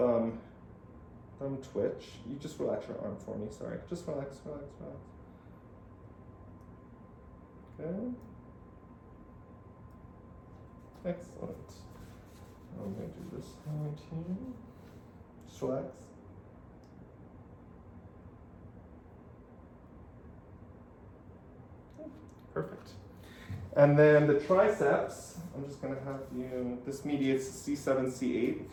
twitch. You just relax your arm for me, sorry. Just relax. Okay. Excellent. I'm going to do this hand here. Just relax. Perfect. And then the triceps, I'm just going to have you, this mediates C7, C8,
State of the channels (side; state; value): both; identical; correlation 1.00